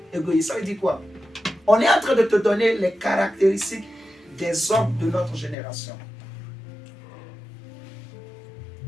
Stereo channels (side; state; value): right; drops out; at 5.6 s